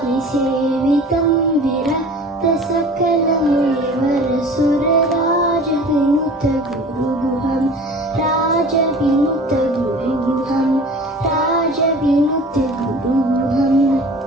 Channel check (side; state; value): both; normal; correlation 0.42